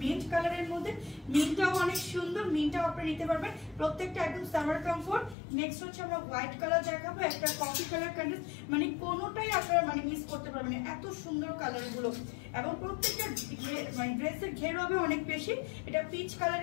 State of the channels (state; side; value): drops out; right; at 5.4 s